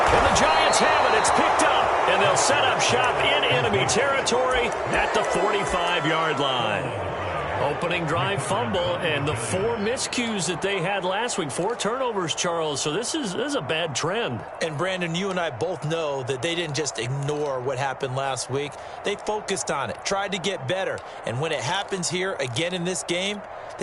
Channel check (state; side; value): identical; both; correlation 1.00